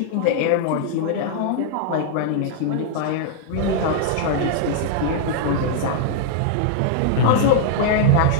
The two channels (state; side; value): different; both; correlation -0.01